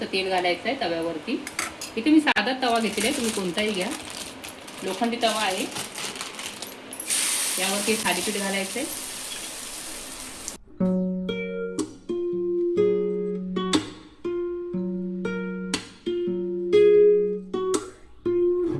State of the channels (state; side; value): identical; both; correlation 1.00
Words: तेल घालायचं आहे तव्यावरती. इथे मी साधा तवा घेतलेला आहे, तुम्ही कोणताही घ्या. लोखंडी तवा आहे. यावरती थालीपीठ घालायचं आहे.